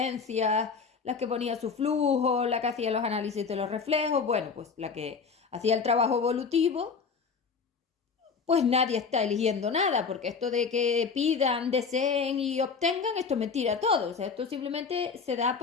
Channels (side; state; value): right; quieter; 5.4 dB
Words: la que ponía su flujo, la que hacía los análisis de los reflejos, bueno, pues la que hacía el trabajo evolutivo, pues nadie está eligiendo nada, porque esto de que pidan, deseen y obtengan, esto es mentira todo. O sea, esto simplemente se da